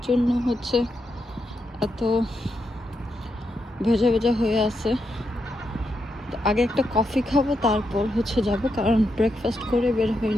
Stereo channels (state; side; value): normal; both; correlation 0.83